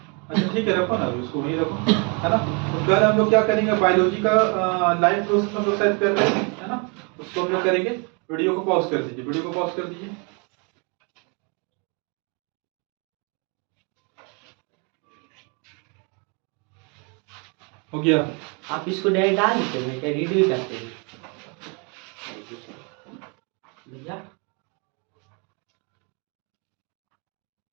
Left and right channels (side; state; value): left; quieter; 33.8 dB